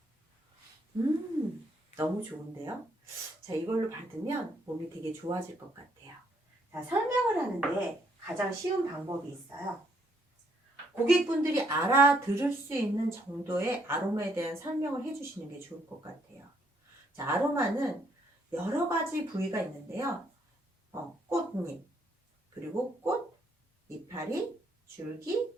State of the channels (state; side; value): normal; both; correlation 0.71